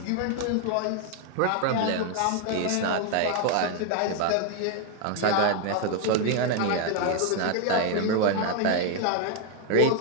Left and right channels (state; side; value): different; both; correlation 0.00